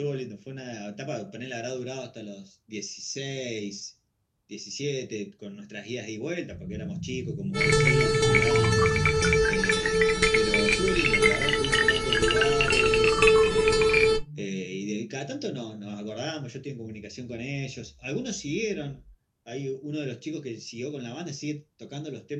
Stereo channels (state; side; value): identical; both; correlation 1.00